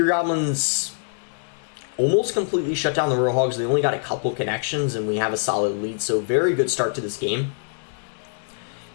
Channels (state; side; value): silent; right; 63 dB below the other